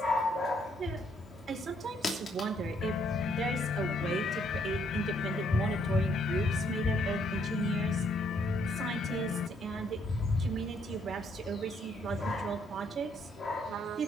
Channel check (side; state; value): both; normal; correlation 0.69